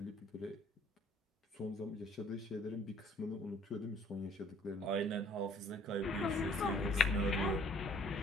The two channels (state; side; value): normal; both; correlation 0.58